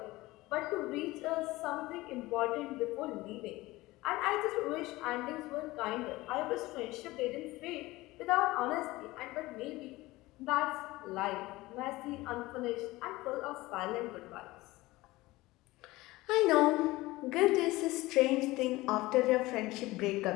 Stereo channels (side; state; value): right; quieter; 19.5 dB